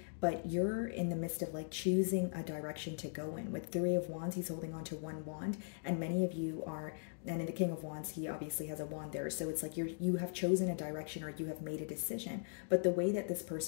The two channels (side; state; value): right; silent; digital silence